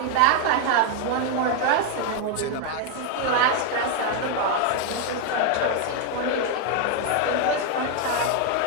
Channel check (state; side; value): different; both; correlation 0.01